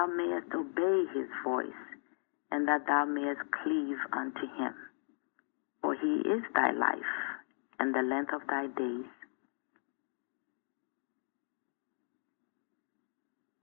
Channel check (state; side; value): silent; right; 53 dB below the other